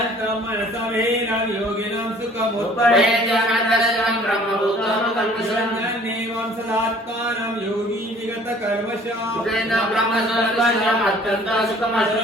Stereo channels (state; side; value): normal; both; correlation 0.53